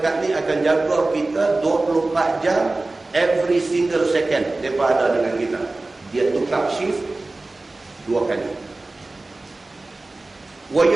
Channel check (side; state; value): left; quieter; 3.1 dB